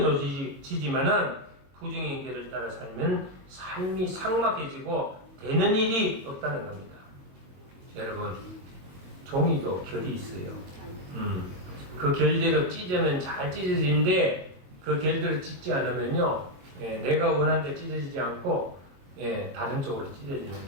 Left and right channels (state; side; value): late; left; 22 ms